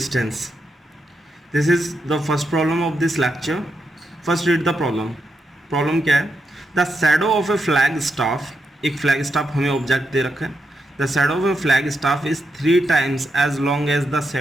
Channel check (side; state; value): both; normal; correlation 0.83